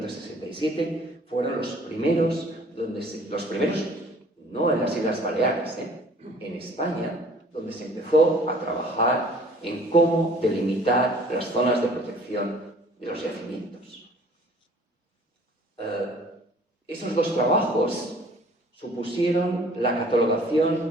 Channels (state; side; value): normal; both; correlation 0.53